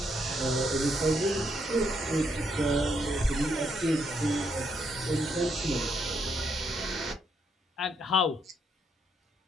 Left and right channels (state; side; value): normal; both; correlation 0.75